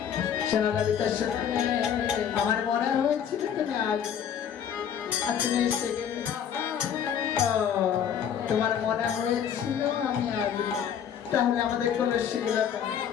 শোনো ললিতা, শোনো, আমার মনে হয়েছিল তুমি আজ তুমি এসে গেলে। তোমার মনে হয়েছিল আমি আজ, তাহলে আমাদের কোনো শিলতা।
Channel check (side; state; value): right; quieter; 8.6 dB